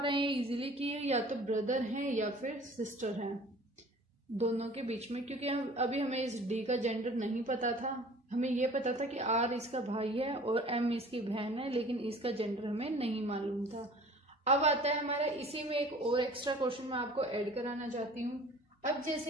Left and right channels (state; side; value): normal; both; correlation 0.47